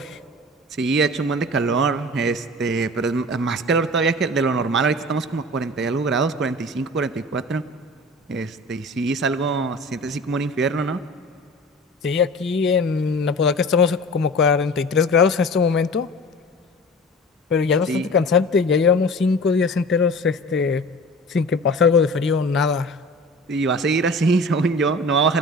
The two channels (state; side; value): normal; both; correlation 0.39